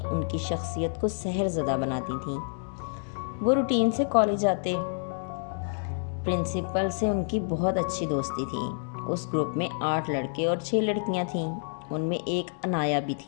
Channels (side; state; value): right; silent; digital silence